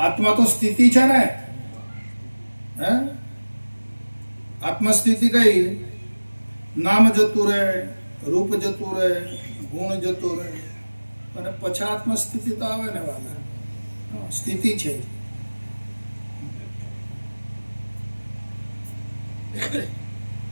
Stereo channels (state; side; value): inverted; both; correlation -1.00